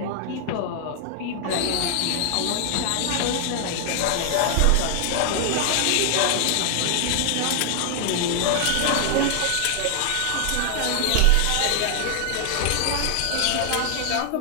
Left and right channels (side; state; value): both; different; correlation 0.00